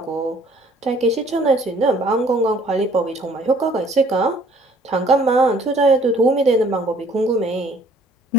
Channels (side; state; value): both; normal; correlation 0.57